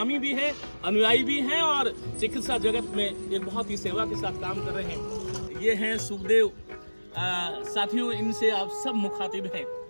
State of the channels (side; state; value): both; inverted; correlation -1.00